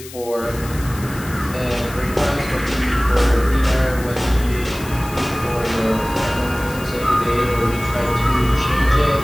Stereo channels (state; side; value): noise; left; hiss, 16 dB below the sound